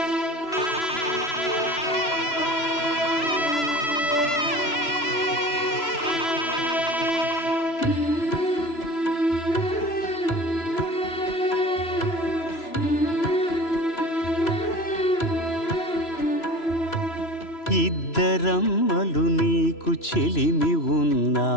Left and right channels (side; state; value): right; late; 3.0 ms